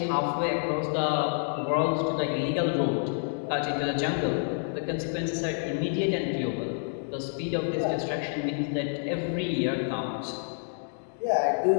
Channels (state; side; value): silent; right; digital silence